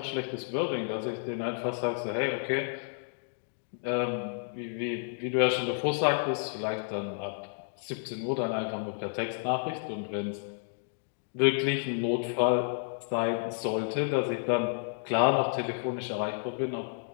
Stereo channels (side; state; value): right; silent; digital silence